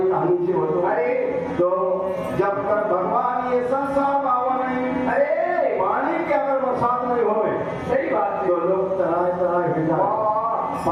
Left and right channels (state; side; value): identical; both; correlation 1.00